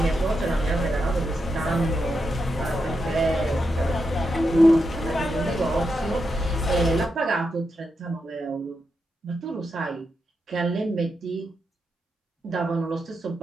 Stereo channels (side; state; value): both; normal; correlation 0.86